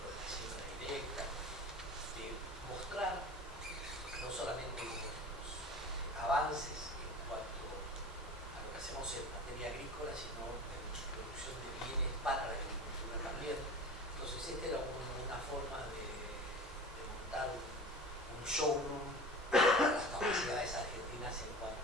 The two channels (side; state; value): both; normal; correlation 0.36